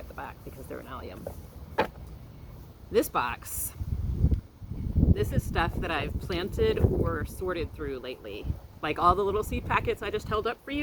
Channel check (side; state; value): both; identical; correlation 1.00